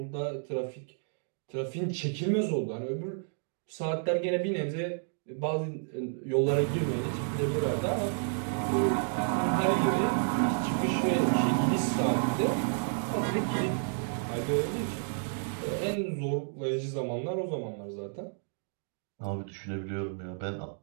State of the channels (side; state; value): left; silent; 57 dB below the other